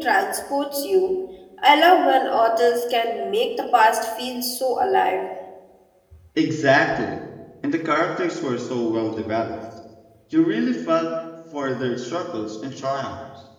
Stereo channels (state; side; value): identical; both; correlation 1.00